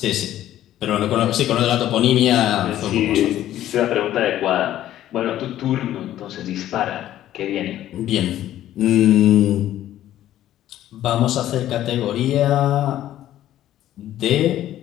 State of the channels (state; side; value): quieter; right; 12.8 dB